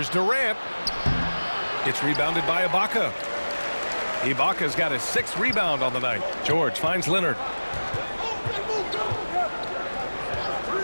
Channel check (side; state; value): both; inverted; correlation -1.00